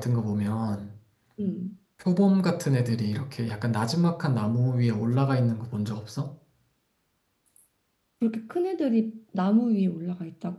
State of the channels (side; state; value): both; identical; correlation 1.00